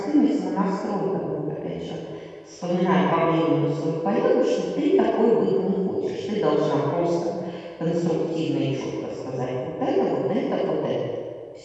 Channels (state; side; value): identical; both; correlation 1.00